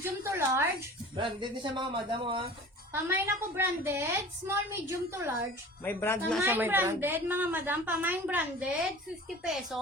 to large. Branded din siya mga madam oh, ha. Pamain ako branded. Small, medium to large. May brand na siya, Pamain may brand. branded, mga madam. Pamain branded, 50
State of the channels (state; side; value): normal; both; correlation 0.41